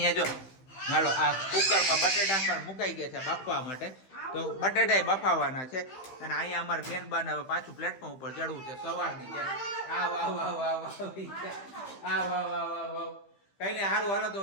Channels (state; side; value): late; right; 15 ms